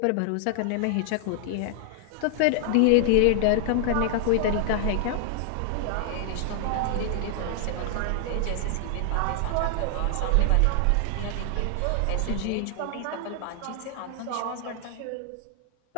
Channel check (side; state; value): both; different; correlation 0.00